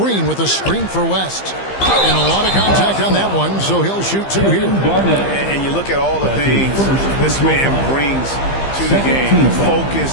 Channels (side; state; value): right; late; 15 ms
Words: with a screen for West. And a lot of contact on that one, so he'll shoot two here. And you look at all the things this man brings to the game. The